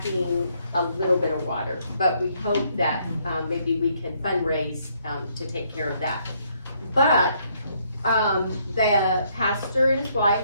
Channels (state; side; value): inverted; both; correlation -0.70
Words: a little bit of water, but we hope that, maybe we can fundraise, to take care of that. But, the pastor and his